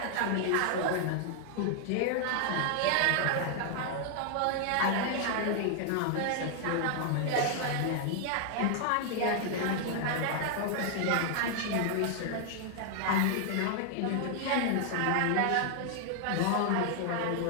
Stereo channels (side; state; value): both; different; correlation 0.00